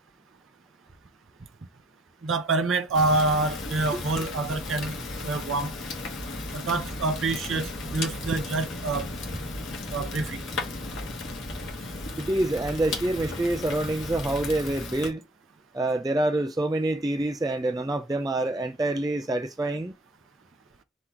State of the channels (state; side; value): normal; both; correlation 0.52